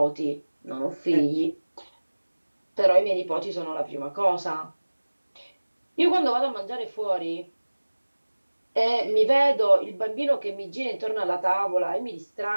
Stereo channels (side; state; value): both; inverted; correlation -1.00